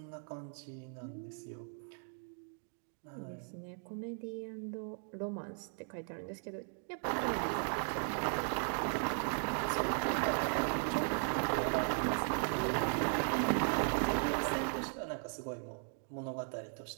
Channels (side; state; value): left; silent; 53 dB below the other